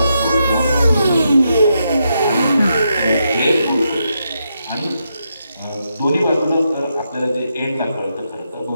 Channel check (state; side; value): inverted; both; correlation -0.82